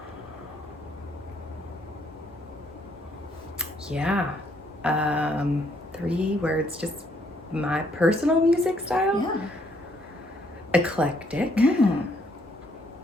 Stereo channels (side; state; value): both; normal; correlation 0.69